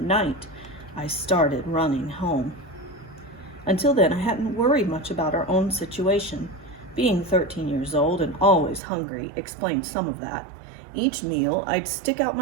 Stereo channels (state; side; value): drops out; left; at 8.8 s